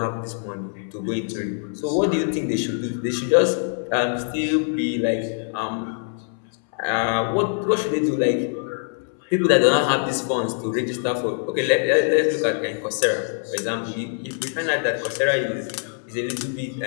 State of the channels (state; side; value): silent; right; 63 dB below the other